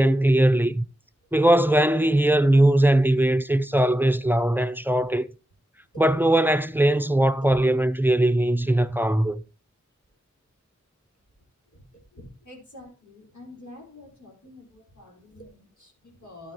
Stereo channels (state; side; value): normal; both; correlation 0.90